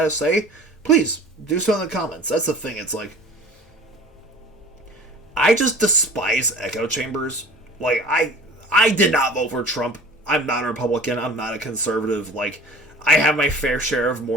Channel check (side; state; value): both; normal; correlation 0.44